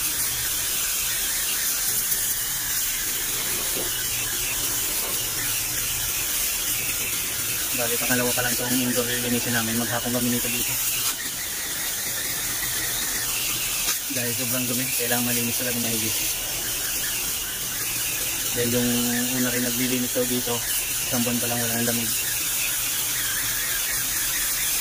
Bali, pangalawa pa lang itong indoor linisin namin. Maghapon kami nito dito. Dahil sobrang dumi, kailangan malinis talaga maigis. Dahil yung una rin naglilinis daw dito, isang buwan pa lang wala ng lamig.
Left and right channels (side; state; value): both; identical; correlation 1.00